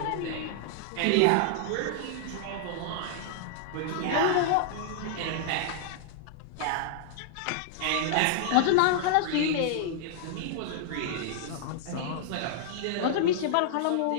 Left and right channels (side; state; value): both; different; correlation -0.01